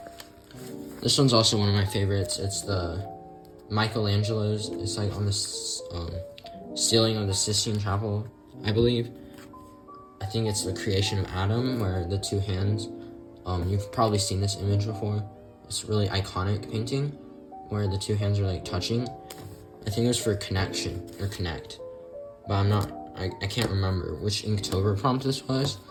also one of my favorites. It's the Michelangelo's. It's like on the ceiling of the Sistine Chapel, I believe. I think it's the creation of Adam, where the two hands. You've probably seen this image before. It's a really iconic painting, where the two hands are like touching. I think it was for connection or connect, but I can't remember which Inktober prompt this was,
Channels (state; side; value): identical; both; correlation 1.00